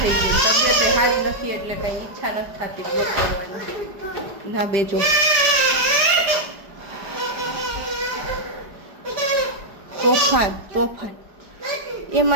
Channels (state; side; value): late; left; 4.9 ms